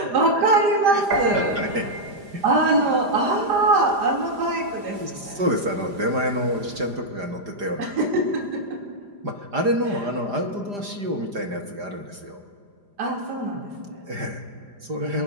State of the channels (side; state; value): left; late; 5.0 ms